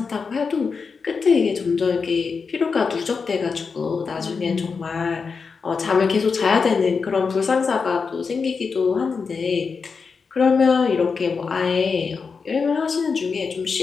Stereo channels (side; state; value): right; quieter; 5.2 dB